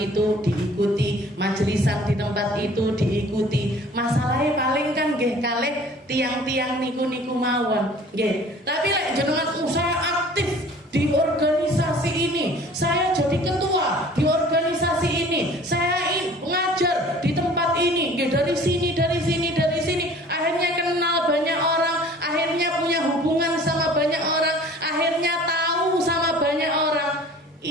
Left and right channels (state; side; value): normal; both; correlation 0.48